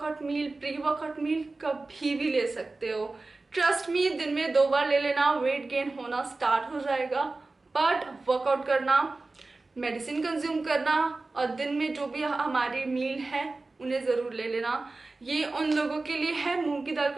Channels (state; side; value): quieter; left; 3.4 dB